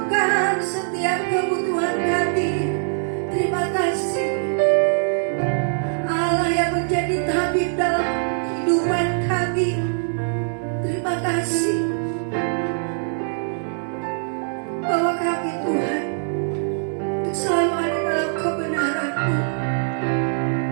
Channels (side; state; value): left; silent; 64 dB below the other